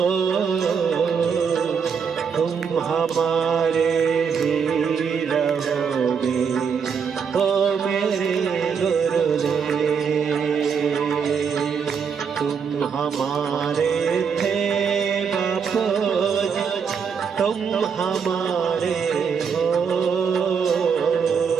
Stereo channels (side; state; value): left; quieter; 6.4 dB